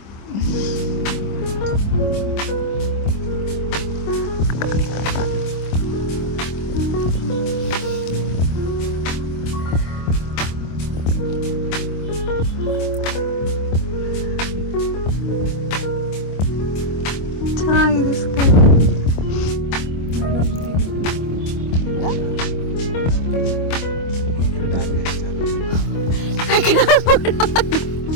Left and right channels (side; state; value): right; late; 25 ms